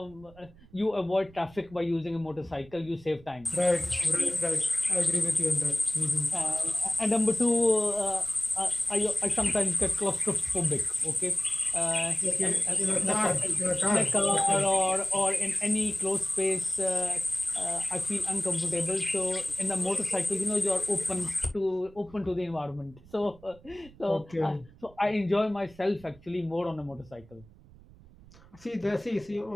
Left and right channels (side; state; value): right; noise; rumble, 24 dB below the sound